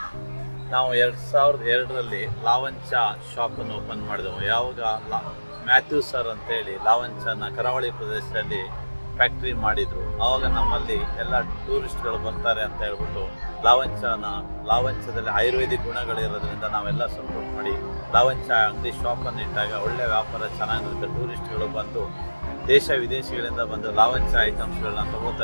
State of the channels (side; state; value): both; inverted; correlation -1.00